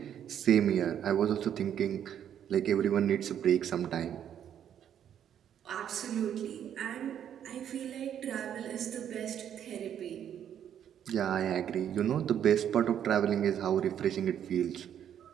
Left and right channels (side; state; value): left; quieter; 9.5 dB